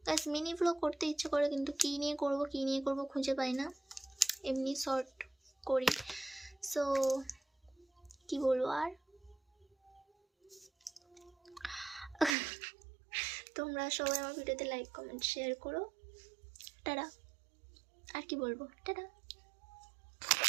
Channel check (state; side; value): drops out; left; at 12.4 s